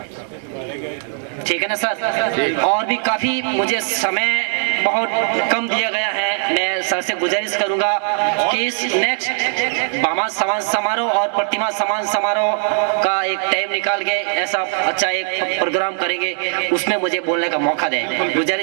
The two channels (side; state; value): left; silent; 58 dB below the other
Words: ठीक है ना सर? और भी काफी मुझे समय बहुत कम दिया गया है। मैं सर से गुजारिश करूंगा कि इस नेक्स्ट भामा समाज समारोह और प्रतिमा समाज समारोह का एक टाइम निकाल के ऐसा अच्छा एक प्रोग्राम करेंगे, उसमें मुझे बोलने का मौका दें।